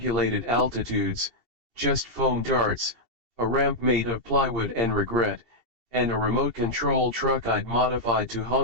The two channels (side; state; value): right; late; 2.7 ms